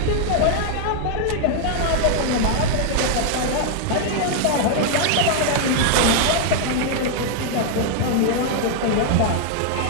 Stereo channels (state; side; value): different; both; correlation -0.01